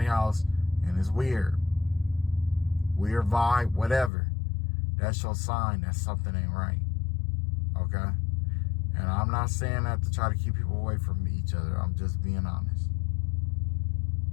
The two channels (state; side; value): drops out; right; at 4.1 s